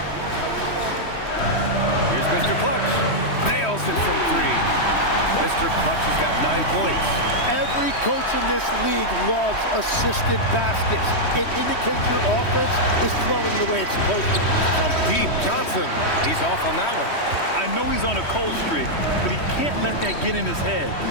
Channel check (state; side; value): late; right; 3.1 ms